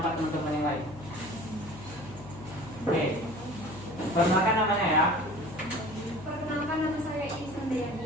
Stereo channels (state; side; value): noise; left; hum, 16 dB below the sound